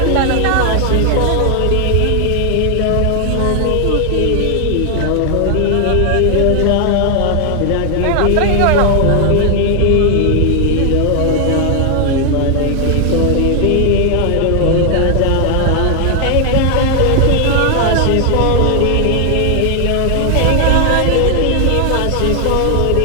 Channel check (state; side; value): different; both; correlation 0.00